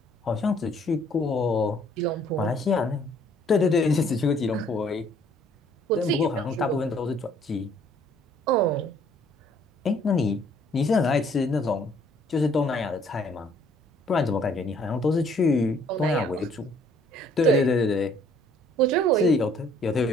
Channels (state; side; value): normal; both; correlation 0.61